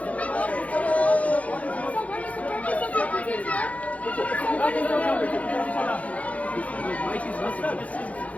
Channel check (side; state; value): right; late; 0.067 ms